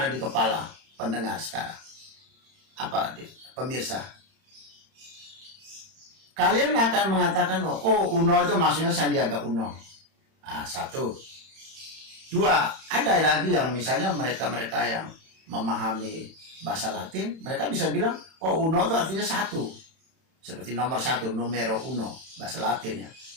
di kepala pendengar sekarang? Apa, pemirsa? Kalian akan mengatakan, oh UNO itu maksudnya Sandiaga Uno. Nah, satu. Dua, ada lagi yang misalnya mereka-mereka yang memahami bahasa Latin, mereka bisa bilang, oh UNO itu artinya satu. Seperti nomor satu, numero uno, bahasa Latin ya.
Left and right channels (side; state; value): left; late; 31 ms